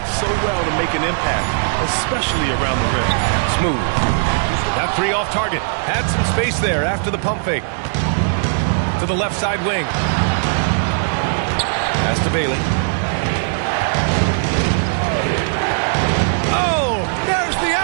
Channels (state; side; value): silent; left; digital silence